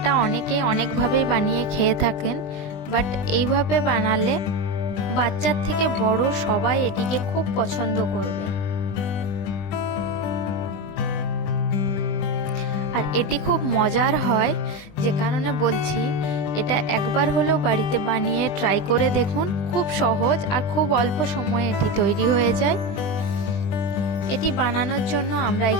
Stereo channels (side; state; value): right; late; 20 ms